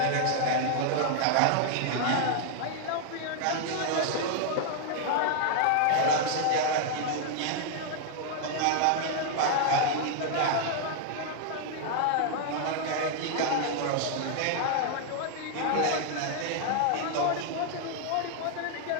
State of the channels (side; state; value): both; different; correlation 0.00